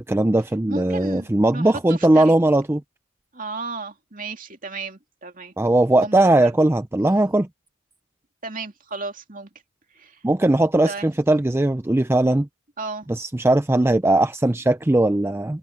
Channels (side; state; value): both; normal; correlation 0.87